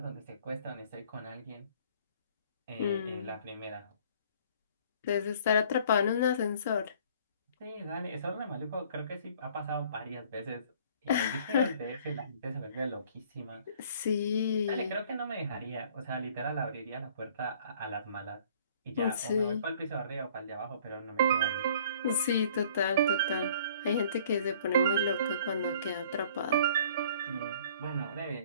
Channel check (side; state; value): both; inverted; correlation -0.54